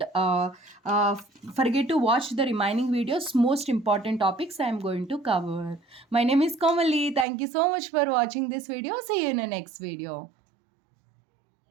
forget to watch the remaining videos. Most important topics I am going to cover. My name is Kamali. Thank you so much for watching this video. See you in the next video.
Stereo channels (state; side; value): drops out; left; at 7.2 s